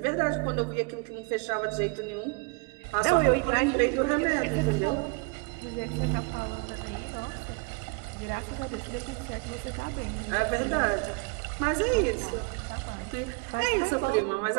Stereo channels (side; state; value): left; quieter; 29.5 dB